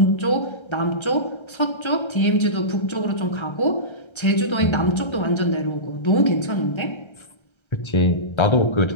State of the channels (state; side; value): late; right; 1.3 ms